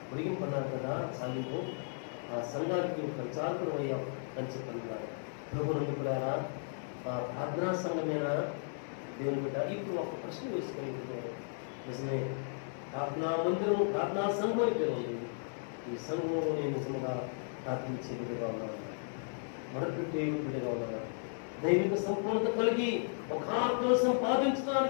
పొడిగింపన్నారు కదా చాలింపు. ఆ సంఘానికి ప్రచారకుడు అయ్యాం అని చెప్పన్నారు. ప్రభు నుండి కూడా ఆ ప్రార్థనా సంఘమేనా దేవుని బిడ్డ? ఇప్పుడు ఒక ప్రశ్న వేసుకొని నిజమే, ప్రార్థనా మందిరం ప్రార్థనా సంఘం అయితే ఉంది. ఈ సంఘంలో నేను నిజంగా ప్రార్థించే బిడ్డగా ఉన్నాను, మరొకటి బిడ్డగా ఉన్నాను, దైవిక సంపూర్ణత కలిగి ఒక ఆత్మను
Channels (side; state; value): right; silent; digital silence